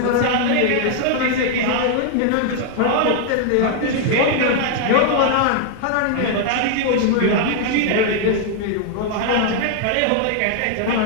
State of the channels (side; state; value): both; different; correlation 0.00